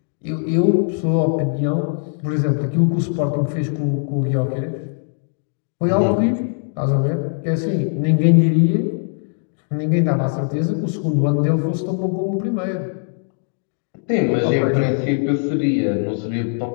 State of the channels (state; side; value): silent; right; 62 dB below the other